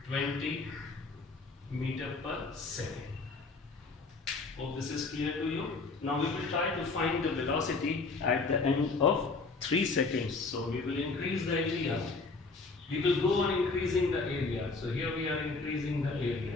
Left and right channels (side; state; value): right; quieter; 3.9 dB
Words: 20 meter per second. Hope this is clear to you. Now we will try to find the velocity at the end of 3 seconds. So we will increase the area. We will go on increasing the area. So here we are increasing the